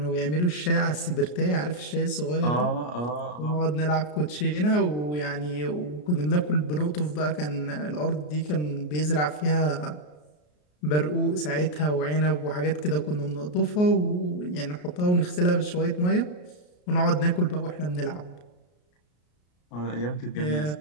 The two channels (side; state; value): right; late; 33 ms